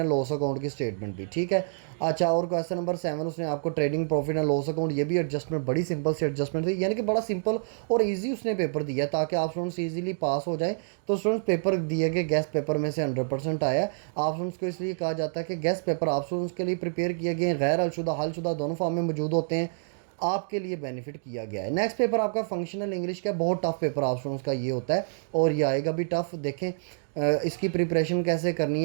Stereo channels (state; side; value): silent; left; digital silence